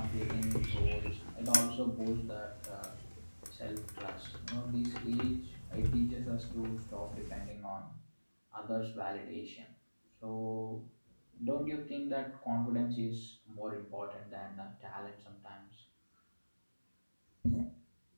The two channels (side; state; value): both; inverted; correlation -1.00